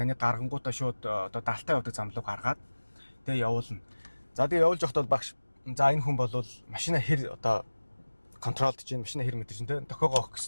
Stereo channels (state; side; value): inverted; both; correlation -1.00